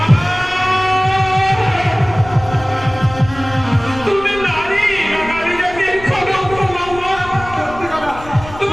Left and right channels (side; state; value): left; noise; rumble, 15 dB below the sound